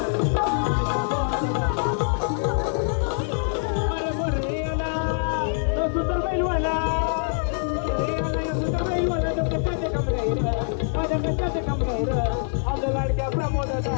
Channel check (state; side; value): silent; right; 58 dB below the other